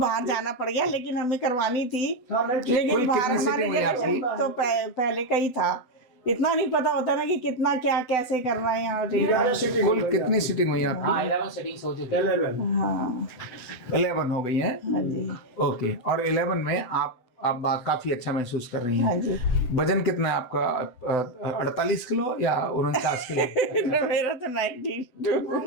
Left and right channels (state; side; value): late; right; 7.9 ms